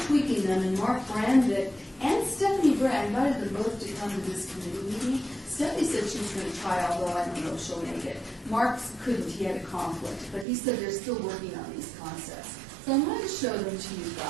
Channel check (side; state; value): left; drops out; at 10.5 s